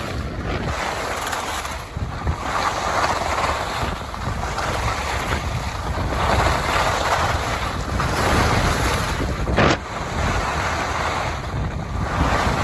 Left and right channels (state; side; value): identical; both; correlation 1.00